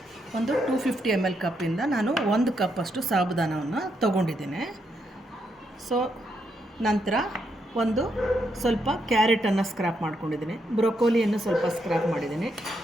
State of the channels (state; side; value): normal; both; correlation 0.79